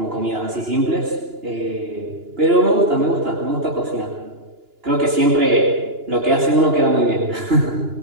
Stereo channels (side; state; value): left; late; 2.9 ms